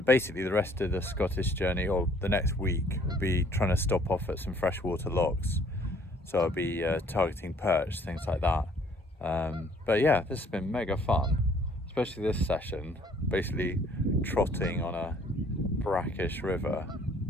basically the rest of the Scottish journey, or the next week, will be trying to stop off at some freshwater lochs, so I'll be targeting perch, things like that. But yeah, this has been mega fun, especially this session, basically trotting on a brackish river.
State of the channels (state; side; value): normal; both; correlation 0.59